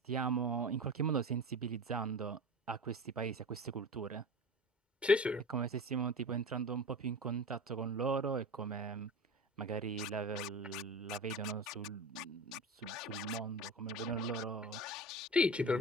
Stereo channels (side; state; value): both; normal; correlation 0.32